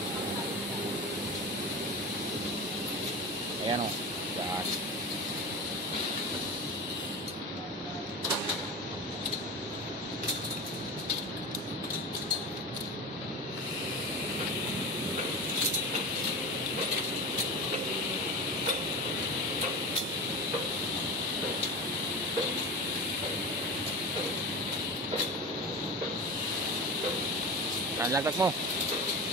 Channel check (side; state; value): both; normal; correlation 0.28